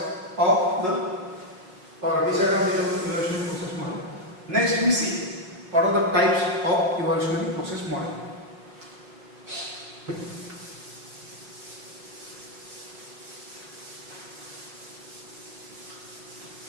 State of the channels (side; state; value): left; late; 5.3 ms